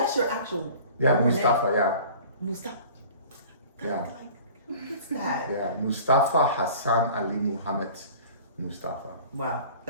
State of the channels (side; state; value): both; inverted; correlation -0.45